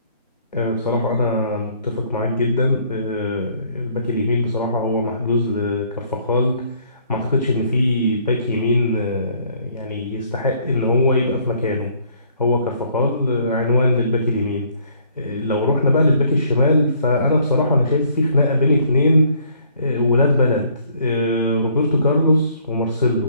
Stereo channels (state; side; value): inverted; both; correlation -0.62